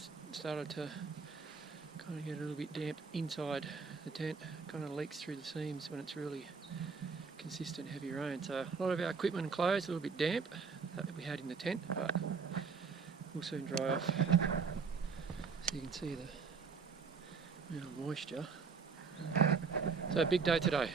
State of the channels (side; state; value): left; quieter; 5.2 dB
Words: started to kind of get a little bit damp inside the tent. Kind of leaks through the seams when it's really consistent heavy rain. So a lot of our equipment and clothes a little bit damp that we had in the tent, but will soon dry off. So you can see the amount of moisture. So a big day today,